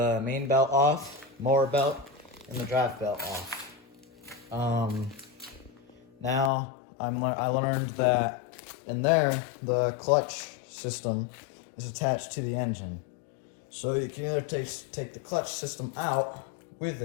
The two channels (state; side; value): drops out; right; at 6.5 s